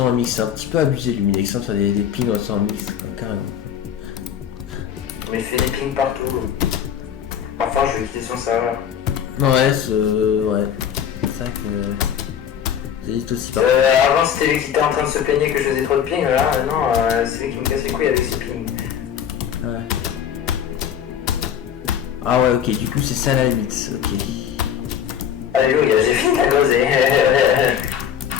un mix, c'est un petit peu abusé Luminex, ça des pings ressent un mix, quoi, carrément. Mais il fait des pings partout. Enfin je vais quitter son serveur. Ouais, ouais. C'est ça que. C'est juste aussi pas. Avant c'était lui qui était en train de se plaigner que je faisais trop de ping, là non, c'est lui qui me casse les couilles avec ses pings. Ouais. Ah ouais, ok, du coup c'est ça la limite, ok. Alléluia, j'ai fini la groser.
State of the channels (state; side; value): quieter; right; 8.8 dB